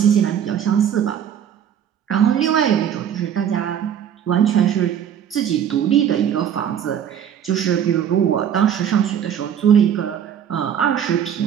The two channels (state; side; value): quieter; left; 9.1 dB